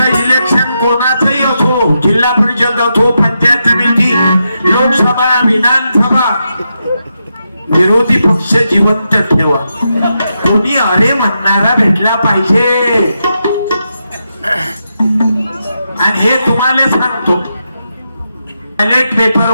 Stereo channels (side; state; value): both; inverted; correlation -0.85